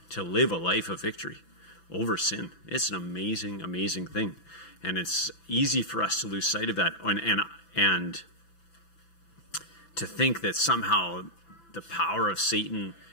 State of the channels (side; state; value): right; late; 6.0 ms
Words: to live a life of victory over sin. It's an amazing, amazing thing. And it's easy for us to lose sight of that and to think that somehow the power of Satan,